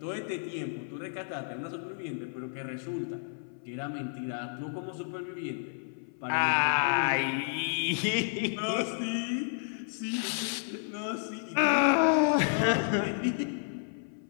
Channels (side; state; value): right; silent; 57 dB below the other